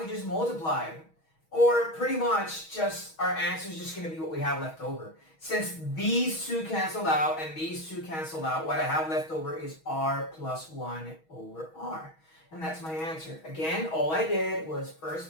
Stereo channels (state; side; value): late; right; 6.3 ms